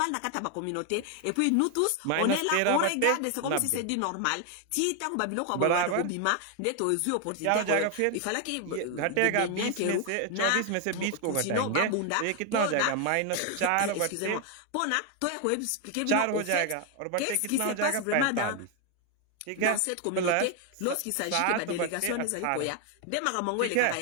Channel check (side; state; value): both; different; correlation 0.01